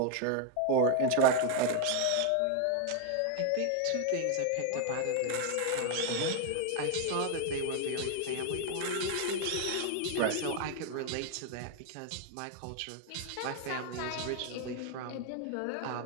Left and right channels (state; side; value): different; both; correlation 0.00